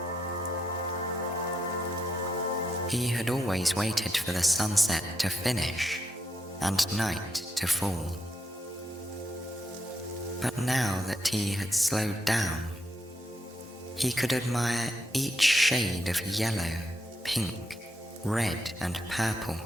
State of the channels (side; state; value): both; normal; correlation 0.81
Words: He had always waited for the sunset to finish and night to fall. But now that he had slowed down, he could admire each shade of yellow, pink, red, and purple